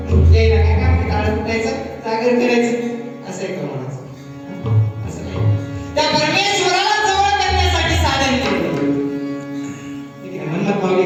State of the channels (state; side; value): identical; both; correlation 1.00